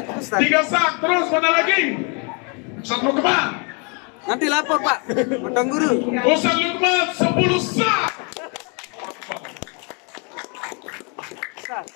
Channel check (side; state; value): right; quieter; 34.9 dB